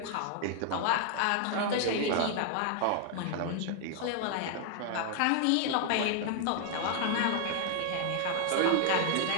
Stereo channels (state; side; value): different; both; correlation 0.00